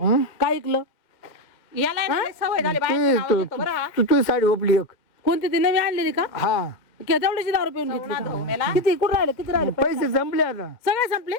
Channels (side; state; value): right; late; 2.0 ms